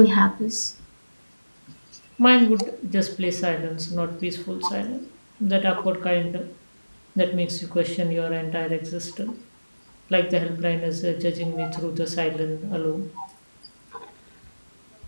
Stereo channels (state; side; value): inverted; both; correlation -1.00